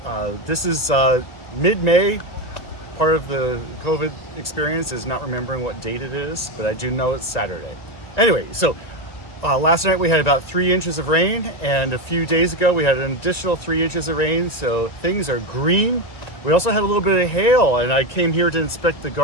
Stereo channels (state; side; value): late; right; 1.8 ms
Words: This is mid-May. Part of the COVID experience is not remembering what date it is, but I do know it's Saturday. Anyway, last night we had about 3 inches of rain, and a few days ago we had an additional 3 inches of rain, so things are green. We also had a little bit of hail, and I came here to inspect the